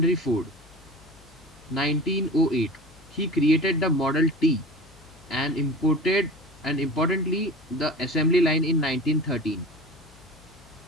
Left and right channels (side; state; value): left; noise; hum, 25 dB below the sound